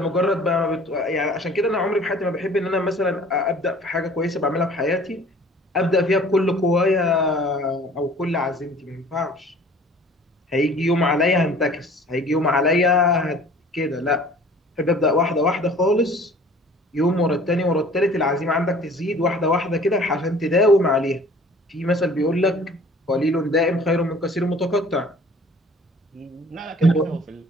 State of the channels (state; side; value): normal; both; correlation 0.50